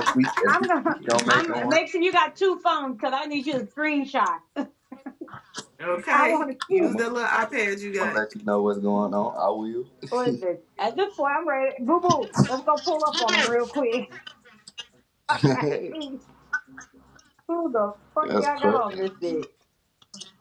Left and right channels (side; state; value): both; identical; correlation 1.00